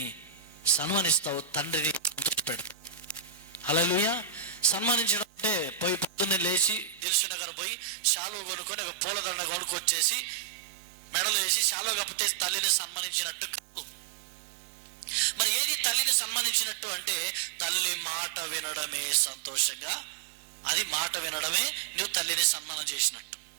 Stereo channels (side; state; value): left; drops out; at 7.0 s